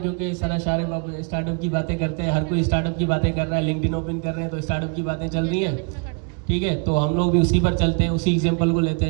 सर शारिब अब स्टार्टअप की बातें करते हैं, हर कोई स्टार्टअप की बातें कर रहा है, लिंक्डइन ओपन कर रहे हैं तो स्टार्टअप की बातें चल रही है। ठीक है, तो हम लोग भी उसी पर चलते हैं, उसी एग्जाम्पल को लेते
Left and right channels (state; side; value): quieter; left; 36.1 dB